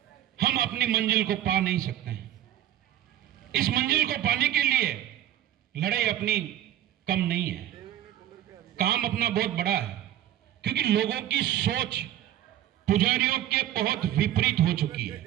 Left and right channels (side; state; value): left; quieter; 12.2 dB